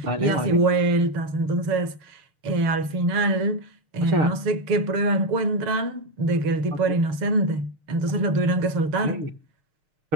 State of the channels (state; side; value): late; left; 6.5 ms